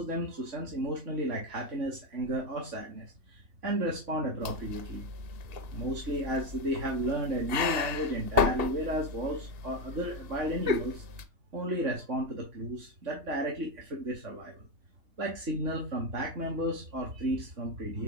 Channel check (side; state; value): left; late; 3.3 ms